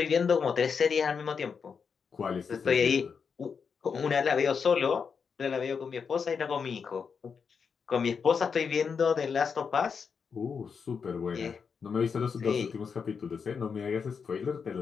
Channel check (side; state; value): right; quieter; 6.0 dB